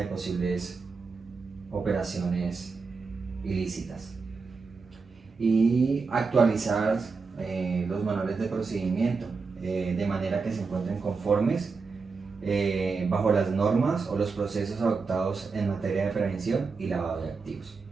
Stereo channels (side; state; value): left; quieter; 4.6 dB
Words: posibles operaciones ilícitas. Y actualizar los manuales de procedimiento de manera que se encuentren conformes bajo las normas o los procesos adoptados en materia de prevención y lavado de activos.